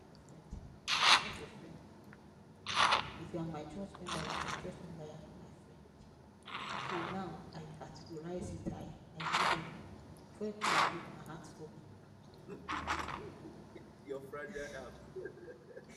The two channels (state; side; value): identical; both; correlation 1.00